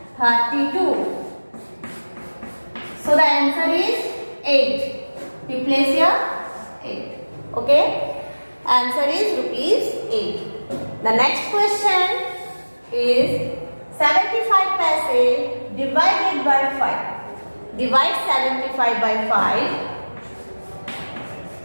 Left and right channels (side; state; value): both; inverted; correlation -1.00